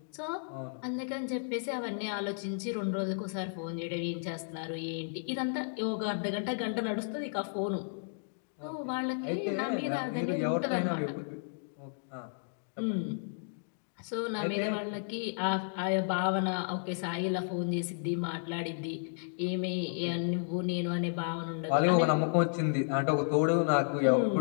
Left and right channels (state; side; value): silent; right; digital silence